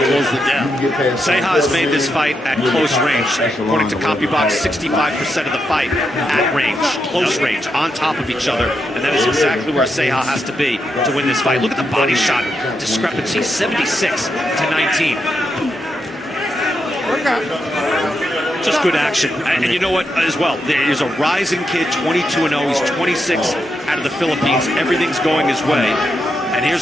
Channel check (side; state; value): both; normal; correlation 0.83